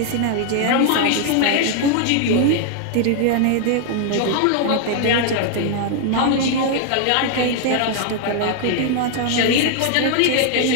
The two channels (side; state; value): both; different; correlation 0.00